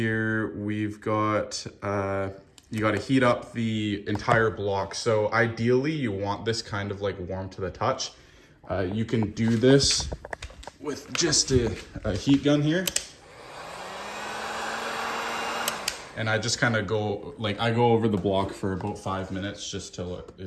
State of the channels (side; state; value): both; identical; correlation 1.00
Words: we've got you got to heat up the entire block. So ideally you want this kind of like warm to the touch. You can do this with just a heat gun here. And I just kind of go over the block for about 5 minutes, just till it